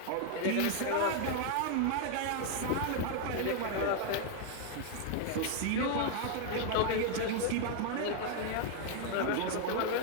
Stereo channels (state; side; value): different; both; correlation 0.00